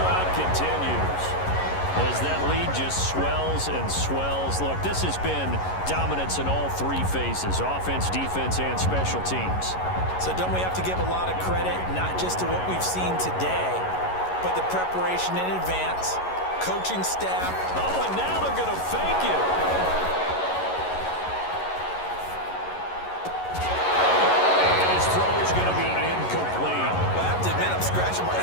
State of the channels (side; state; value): right; late; 11 ms